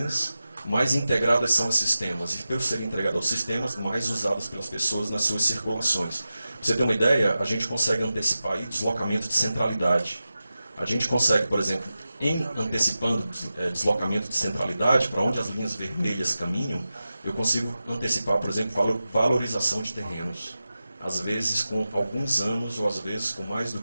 mais integradas são os sistemas. E por serem integrados aos sistemas, mais usados pelas pessoas nas suas circulações. Pra você ter uma ideia, a gente consegue antecipar aí deslocamento de centralidade. A gente consegue, por exemplo, antecipando deslocamento de centralidade, para onde as linhas vermelhas caminham, eu consigo antecipar, por exemplo, valorização de terrenos. às vezes com alguns anos, ou às vezes com mais do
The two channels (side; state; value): both; inverted; correlation -0.93